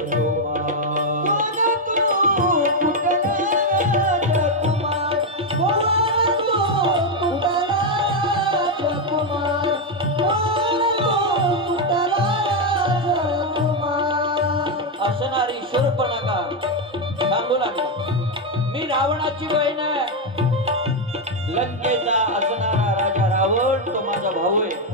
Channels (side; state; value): both; normal; correlation 0.04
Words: असणारी शूर्पणखा सांगू लागली, मी रावणाची बहीण आहे, लंकेचा असणारा राजा रावण तो माझा भाऊ आहे,